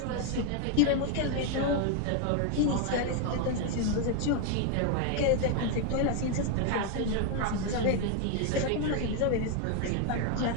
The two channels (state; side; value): different; both; correlation 0.01